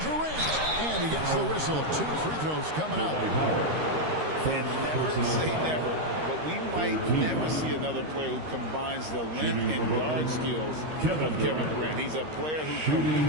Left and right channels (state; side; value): late; left; 13 ms